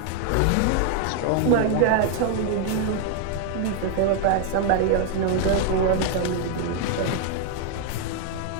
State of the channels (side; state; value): both; different; correlation 0.00